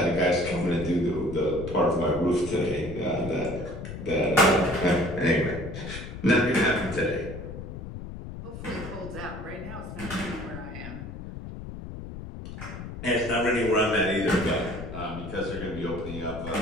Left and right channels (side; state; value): left; noise; rumble, 10 dB below the sound